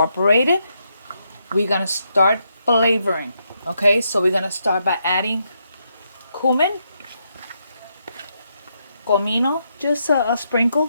We're going to start flavoring. Okay, so we're going to start by adding cumin. Comino, just a sprinkle.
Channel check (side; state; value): both; inverted; correlation -0.79